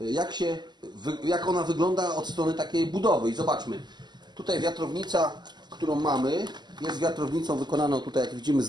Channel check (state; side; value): late; left; 0.21 ms